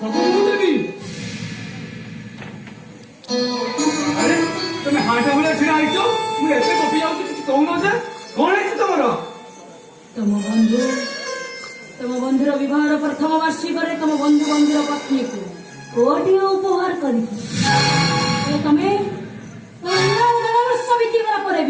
ମୁଁ ଦେବି। ଆରେ ତମେ ହାଟ ଭଳିଆ ଛିଡା ହେଇଛ, ମୁଁ ଏତେ ଗପି ଯାଉଛି କିଛି କହୁନ ଯେ, କଣ ହେଇଛି ତମର? ତମ ବନ୍ଧୁର ବିବାହର ପ୍ରଥମ ବାର୍ଷିକରେ ତମ ବନ୍ଧୁର ପତ୍ନୀକୁ କୋଟିଏ ଉପହାର କରିଛି। ତମେ ବର୍ଷ ବିତିଗଲା ପରେ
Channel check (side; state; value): both; identical; correlation 1.00